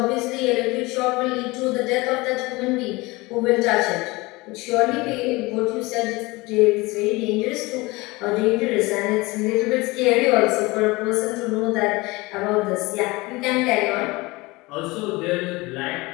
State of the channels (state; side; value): quieter; right; 22.7 dB